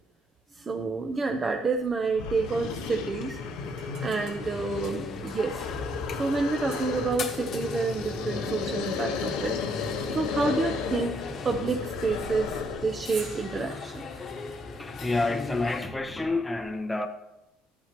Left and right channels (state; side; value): normal; both; correlation 0.71